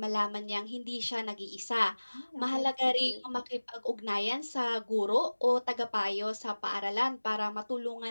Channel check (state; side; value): inverted; both; correlation -1.00